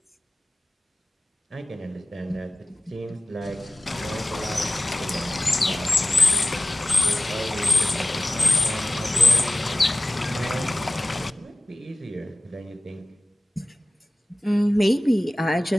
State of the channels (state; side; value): normal; both; correlation 0.97